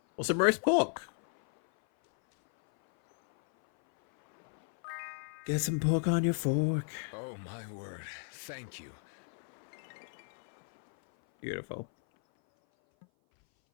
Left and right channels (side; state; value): right; silent; 55 dB below the other